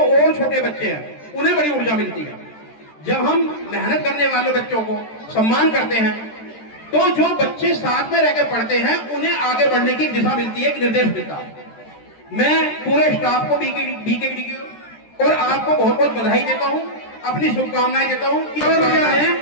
छोटे बच्चे हैं उन्हें बड़ी ऊर्जा मिलती है। जब हम मेहनत करने वाले बच्चों को सम्मान करते हैं तो जो बच्चे साथ में रहकर पढ़ते हैं उन्हें आगे बढ़ने की दिशा मिलती है, एक निर्देश मिलता है। मैं पूरे स्टाफ को बीकेडी की और आपको बहुत बहुत बधाई देता हूं, अपनी शुभकामनाएं देता हूं।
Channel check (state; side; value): late; right; 13 ms